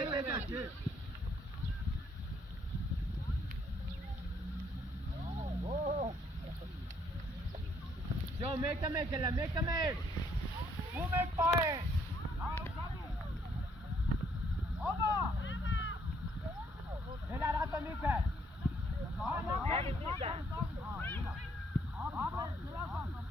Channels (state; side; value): normal; both; correlation 0.68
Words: Yo, Go, make the make, make the make. Who make fire? Over. Helal atla Mika.